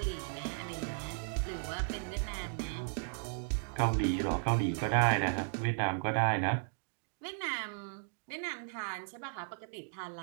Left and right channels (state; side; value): silent; left; digital silence